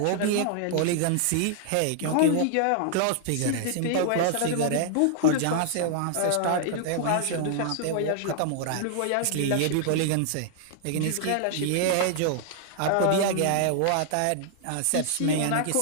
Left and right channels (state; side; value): different; both; correlation -0.01